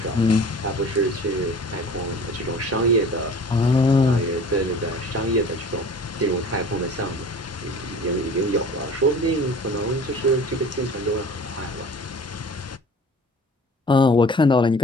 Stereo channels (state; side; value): normal; both; correlation 0.44